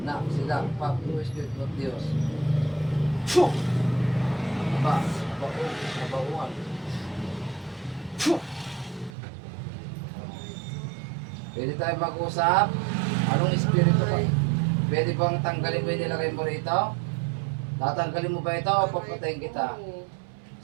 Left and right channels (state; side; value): drops out; left; at 9.1 s